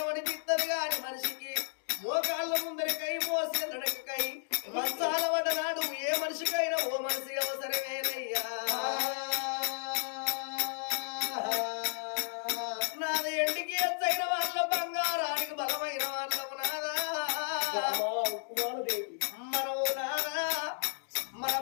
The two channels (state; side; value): silent; right; digital silence